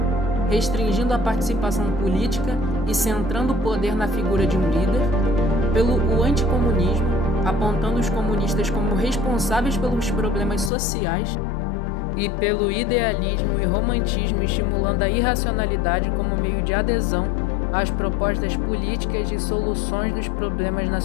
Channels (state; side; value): drops out; right; at 10.7 s